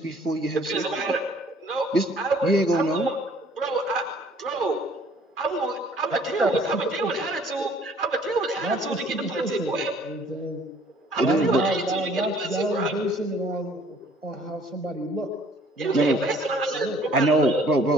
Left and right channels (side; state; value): both; normal; correlation 0.57